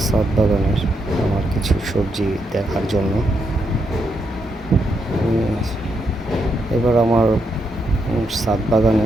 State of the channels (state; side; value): normal; both; correlation 0.80